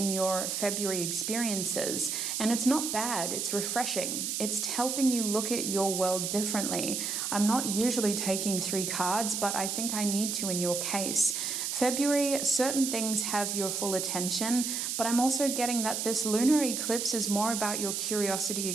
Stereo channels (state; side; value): noise; right; hiss, 2 dB below the sound